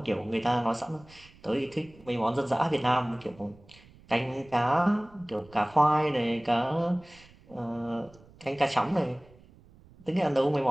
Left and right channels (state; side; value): noise; right; rumble, 25 dB below the sound